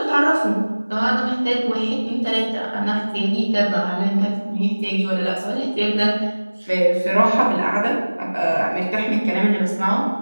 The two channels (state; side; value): inverted; both; correlation -1.00